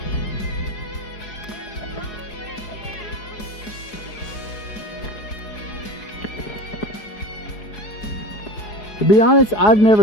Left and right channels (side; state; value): right; late; 4.8 ms